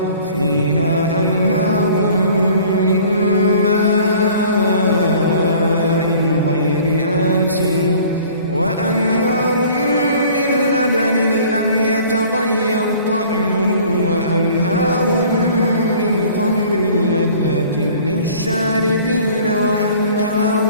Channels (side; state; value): both; inverted; correlation -0.50